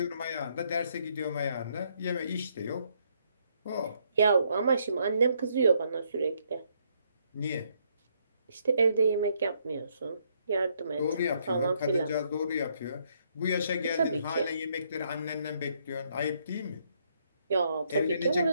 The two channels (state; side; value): inverted; both; correlation -0.72